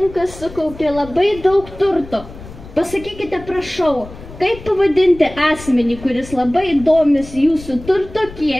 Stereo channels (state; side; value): noise; left; rumble, 16 dB below the sound